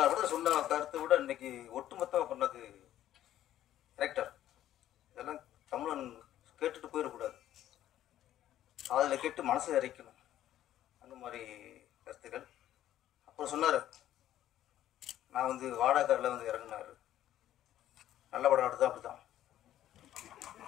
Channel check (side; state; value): right; quieter; 12.4 dB